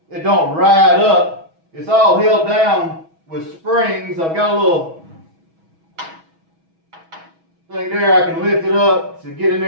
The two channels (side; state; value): left; late; 6.2 ms